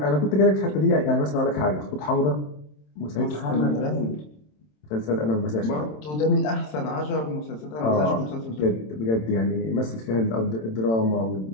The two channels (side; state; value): right; late; 27 ms